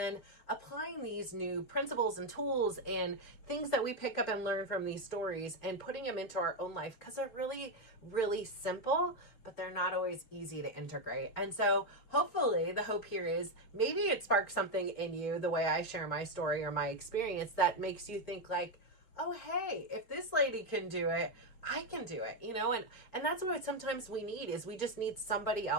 applying these new principles and tools and things that we pick up and learn from these stories and putting them into our own life because they're really simple, but they're not always easy to integrate. And so hopefully the hope here is maybe it sparks something in you, the way I share my story or my experience, that makes you think like, oh, hey, if this lady can do it, I can do it, and that's what sometimes we need is we just need somebody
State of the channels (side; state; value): right; late; 4.3 ms